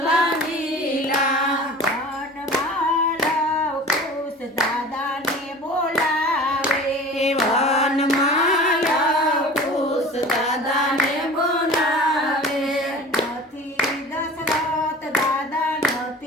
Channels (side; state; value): both; normal; correlation 0.39